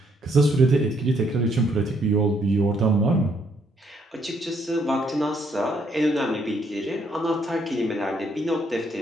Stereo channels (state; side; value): normal; both; correlation 0.71